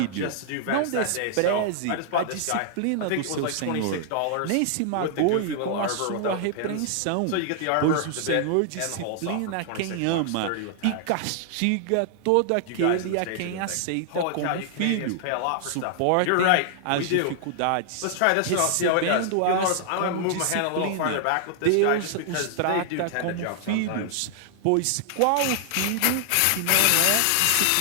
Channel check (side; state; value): both; different; correlation 0.00